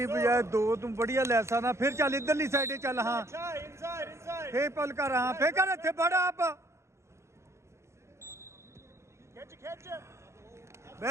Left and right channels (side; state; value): left; late; 0.13 ms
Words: बजाय दो तुम बढ़िया ले सकना फिर चल इधरली साइड चल हाँ फे पल कर हाँ फे कर इत्थे बड़ा आप